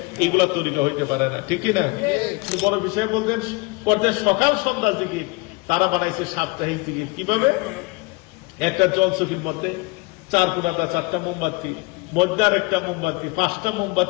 এগুলো তরিকা হইতে পারে না, ঠিক না? বড় বিষয় বলতেন করতে সকাল সন্ধ্যা জিকির, তারা বানাইছে সাপ্তাহিক জিকির। কিভাবে? একটা জলচকির মধ্যে 4 কোণাটা 4টা মোমবাতি, মধ্যে আর একটা মোমবাতি, 5টা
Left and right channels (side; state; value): right; quieter; 26.1 dB